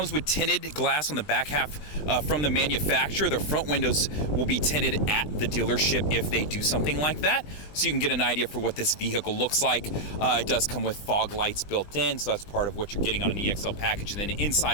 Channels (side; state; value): right; late; 20 ms